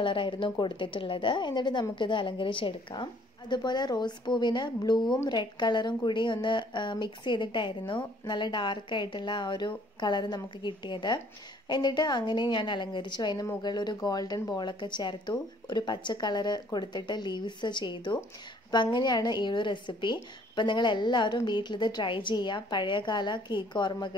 കൊടുത്തിട്ടുള്ളത്. എന്നിട്ട് നമുക്കിത് അലങ്കരിച്ചെടുക്കാം. അതുപോലെ റോസ് പൂവിന് ബ്ലൂവും റെഡ് കളറും കൂടി ഒന്ന് മിക്സ് ചെയ്തിട്ടായിരുന്നു നല്ല ഡാർക്കായിട്ടുള്ള ആ ഒരു കളർ നമുക്ക് കിട്ടിയത്. എന്നിട്ട് അങ്ങനെ ഞാൻ അലങ്കരിച്ചു. അതിന് മുകളിൽ ഒരു ഗോൾഡൻ ബോളൊക്കെ ചേർത്തു, ഒരു പച്ച കളർ കൊടുത്തിട്ട് ലീവ്സ് ചെയ്തു. അപ്പം അങ്ങനെയാണ് ഈ ഒരു റെസിപ്പി. അപ്പം നിങ്ങൾ എല്ലാവരും വീട്ടിലിത് ട്രൈ ചെയ്യുക. പഴയകാല കേക്ക്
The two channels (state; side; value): normal; both; correlation 0.60